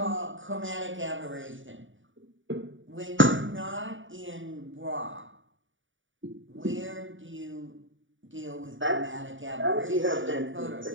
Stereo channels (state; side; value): late; left; 0.56 ms